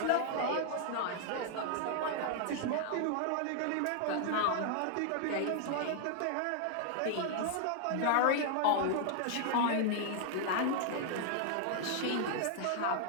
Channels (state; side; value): different; both; correlation 0.00